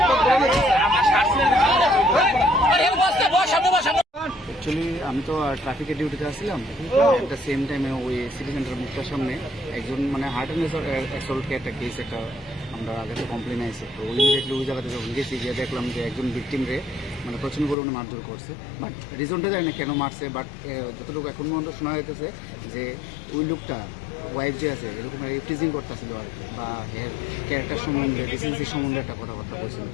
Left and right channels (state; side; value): drops out; right; at 17.8 s